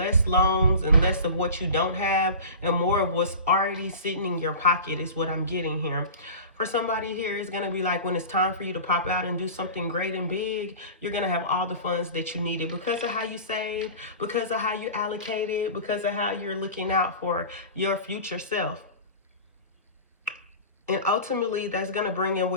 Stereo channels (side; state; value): both; inverted; correlation -0.35